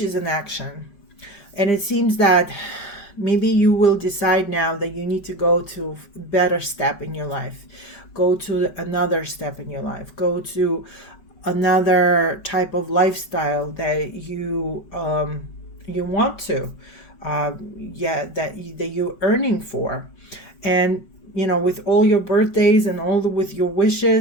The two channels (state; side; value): late; right; 5.3 ms